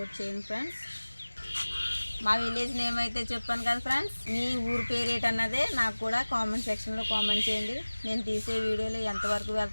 చేయండి ఫ్రెండ్స్. మా విలేజ్ నేమ్ అయితే చెప్పాను కదా ఫ్రెండ్స్. మీ ఊరు పేరేంటి అన్నదే నాకు కూడా కామెంట్ సెక్షన్లో కామెంట్ చేయండి. నేను తీసే వీడియోలు ఎంతవరకు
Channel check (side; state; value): both; inverted; correlation -1.00